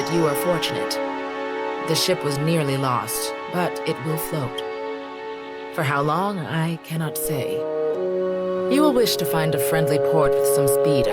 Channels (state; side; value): identical; both; correlation 1.00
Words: you are fortunate. The ship was nearly lost, but it will float. For how long, I cannot say. You will wish to find a friendly port with some speed,